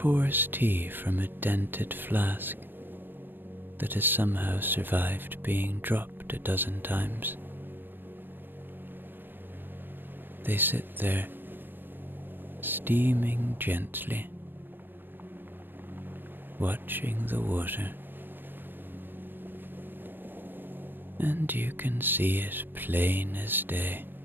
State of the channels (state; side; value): late; left; 0.095 ms